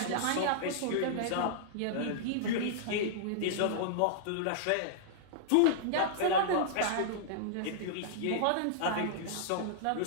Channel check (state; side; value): different; both; correlation -0.02